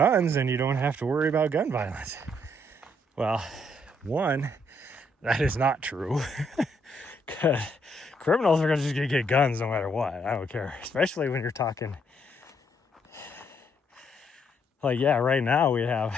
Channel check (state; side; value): normal; both; correlation 0.71